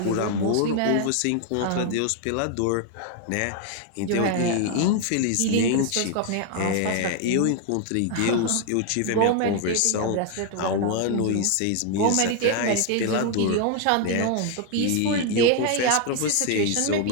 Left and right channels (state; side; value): different; both; correlation 0.00